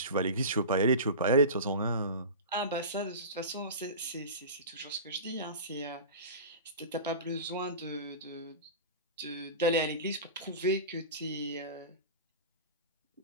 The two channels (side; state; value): both; inverted; correlation -0.30